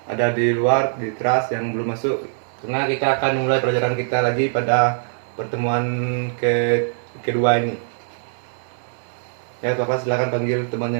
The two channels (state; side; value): silent; left; 63 dB below the other